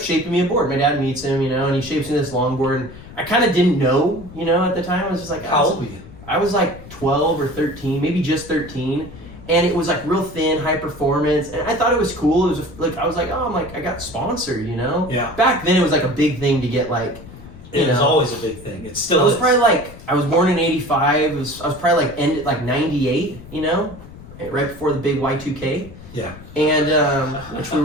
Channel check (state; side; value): noise; left; rumble, 17 dB below the sound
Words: me a board. My dad meets him, and he shapes me this longboard. And I kind of didn't know, at the time. I was just like, How old were you? I was like 12 or 13, maybe just 13. And it was like real thin, high performance. And I thought it was cool. It was like, I was like, oh, I got sponsored, Yeah. Back then it was like a big thing to get like, It was always a big thing. It still I was is. probably like, I was born in 85. I was probably like ended like 98, right before the big Y2K. Yeah. And which we